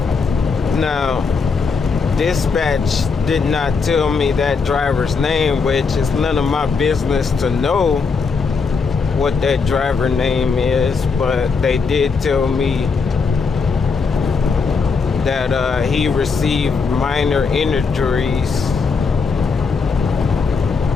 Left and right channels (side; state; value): right; quieter; 5.0 dB